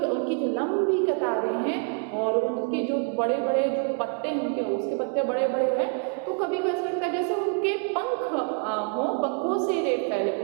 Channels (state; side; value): quieter; left; 39.1 dB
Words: उनकी जो लंबी कतारें हैं और उनके जो बड़े बड़े जो पत्ते हैं उनके, उसके पत्ते बड़े बड़े हैं, तो कभी को ऐसा लगता है जैसे उनके पंख हों, पंखों से रे फैले,